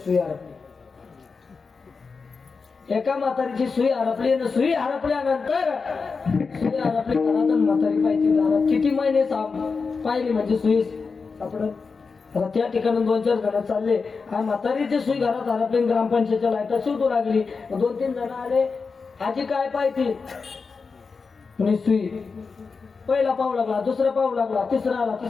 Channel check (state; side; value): quieter; right; 4.8 dB